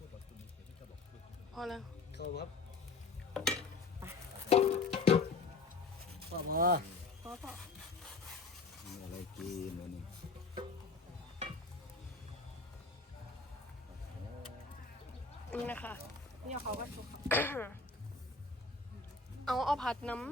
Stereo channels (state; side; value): quieter; right; 4.0 dB